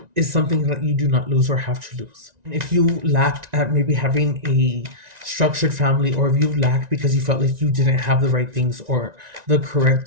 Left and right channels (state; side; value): late; left; 1.9 ms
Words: is something that you do not lose or have to lose. If you lacked at maybe having a structured family, or if you lacked because you felt like you didn't have the right things or the